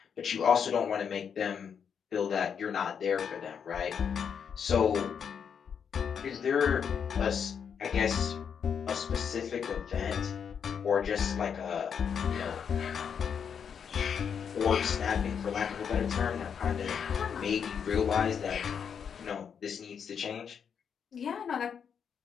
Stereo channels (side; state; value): right; quieter; 7.2 dB